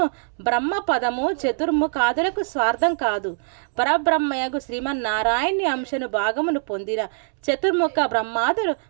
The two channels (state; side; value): silent; left; 63 dB below the other